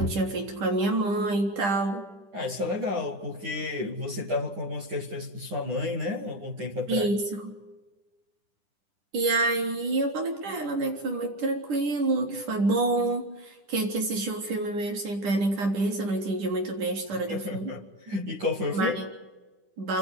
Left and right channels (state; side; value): late; left; 10 ms